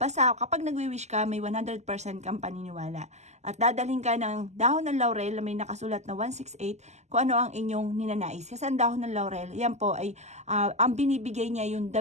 Basta kapag nagwi-wish ka, may 100% kang paniniwala. At dadalhin ka ng dahon ng laurel na may nakasulat na 168 kung ano ang inyong ninanais. Kasi ang dahon ng laurel, yan po ay ang binibigay niya yung the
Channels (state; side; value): late; left; 0.33 ms